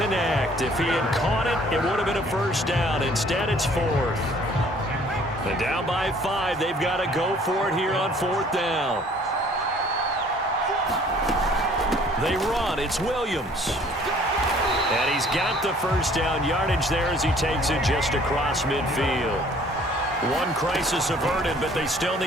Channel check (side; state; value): both; normal; correlation 0.56